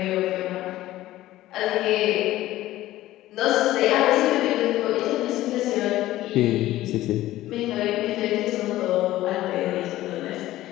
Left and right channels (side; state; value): right; quieter; 15.4 dB